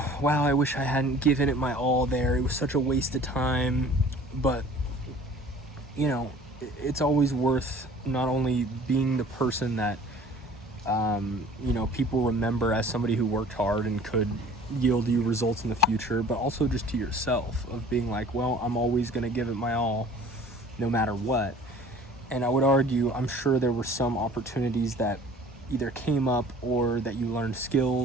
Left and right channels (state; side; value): normal; both; correlation 0.48